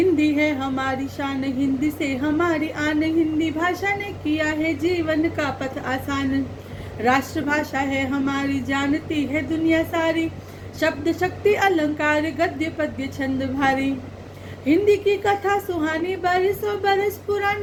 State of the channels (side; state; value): both; identical; correlation 1.00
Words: है हमारी शान, हिंदी से हमारी आन, हिंदी भाषा ने किया है जीवन का पथ आसान। राष्ट्रभाषा है हमारी, जानती है दुनिया सारी, शब्द शक्ति अलंकार गद्य पद्य छंद भारी। हिंदी की कथा सुहानी, बरसों बरस